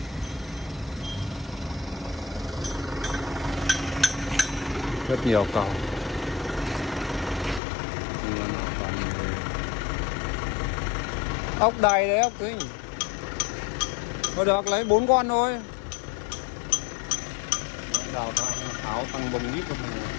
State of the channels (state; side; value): drops out; right; at 7.6 s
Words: Rất nhiều cầu. Ốc đầy đấy, ốc ấy. Thôi được, lấy 4 con thôi. Đào áo tăng bông ít.